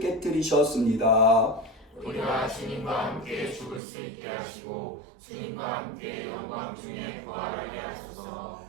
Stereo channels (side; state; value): left; drops out; at 3.8 s